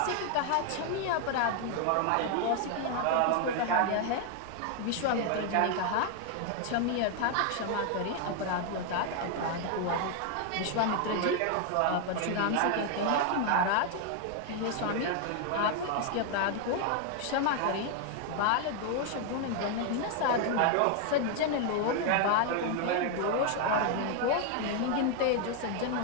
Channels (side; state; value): both; different; correlation 0.00